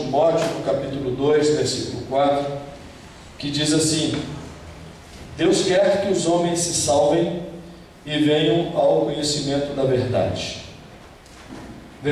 no capítulo 2, versículo 4, que diz assim: Deus quer que os homens se salvem e venham ao conhecimento da verdade.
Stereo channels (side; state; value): both; identical; correlation 1.00